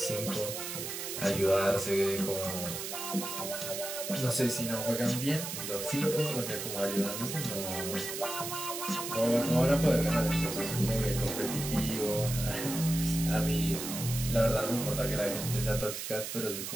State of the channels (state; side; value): noise; right; hiss, 6 dB below the sound